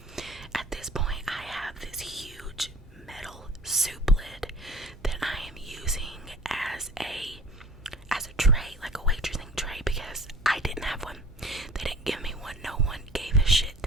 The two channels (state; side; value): normal; both; correlation 0.46